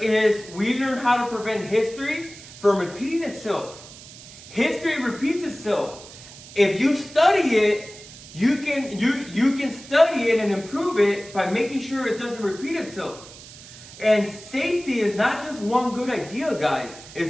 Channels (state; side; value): noise; right; hiss, 17 dB below the sound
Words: is we learn how to prevent history from repeating itself. History repeats itself. If you study it, you can study it and improve it by making sure it doesn't repeat itself. And safety is not just one good idea, guys.